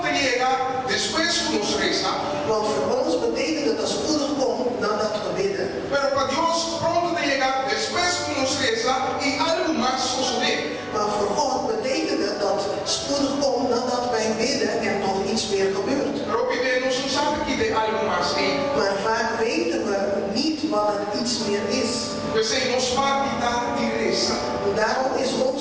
te chega, depois que nos reza. Want voor ons betekent het dat spoedig komt nadat we bidden. Pero para Deus pronto te chega, depois que nos reza e algo mais suceder. Maar voor God betekent het dat spoedig komt nadat wij bidden en nog iets meer gebeurt. Pero pedimos não sabe que tem algo mais aí. Maar vaak weten we niet wat het iets meer is. We zijn nos parte da reza. Daarom is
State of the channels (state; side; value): identical; both; correlation 1.00